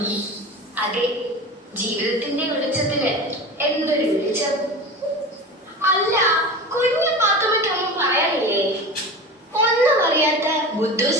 അതെ, ജീവിതത്തിന്റെ വെളിച്ചത്തിന് എന്തൊരു വെളിച്ചം. അല്ല, കുഞ്ഞു പാത്തുമ്മയ്ക്കൊന്നും പറയാനില്ലേ? ഒന്നും അറിയാത്ത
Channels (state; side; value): normal; both; correlation 0.31